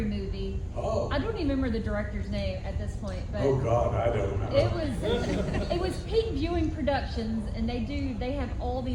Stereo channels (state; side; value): identical; both; correlation 1.00